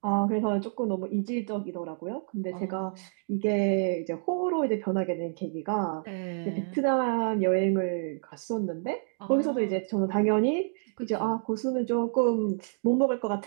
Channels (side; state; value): left; silent; digital silence